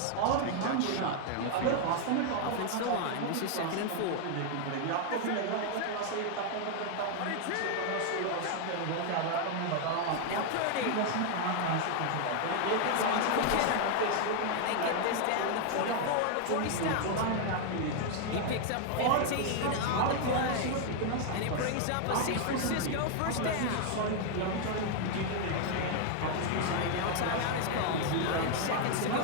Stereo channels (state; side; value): different; both; correlation 0.00